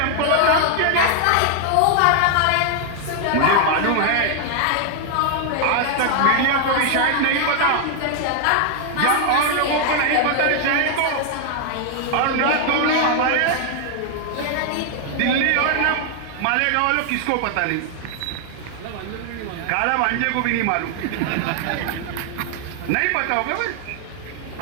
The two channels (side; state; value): both; different; correlation 0.00